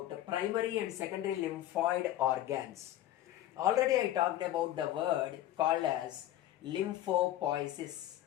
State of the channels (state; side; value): quieter; right; 13.5 dB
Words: primary and secondary lymphoid organs. Already I talked about the word called as lymphopoiesis.